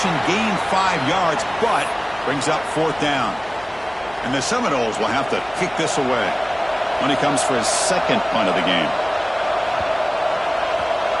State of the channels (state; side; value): noise; left; hum, 26 dB below the sound